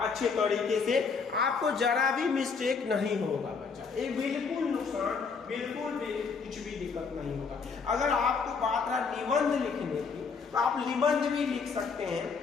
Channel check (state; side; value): quieter; right; 5.2 dB